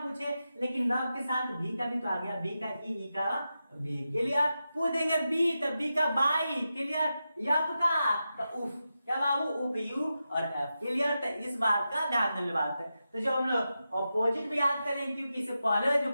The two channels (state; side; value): inverted; both; correlation -0.90